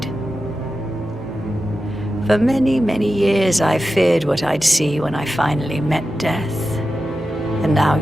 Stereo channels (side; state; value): both; normal; correlation 0.92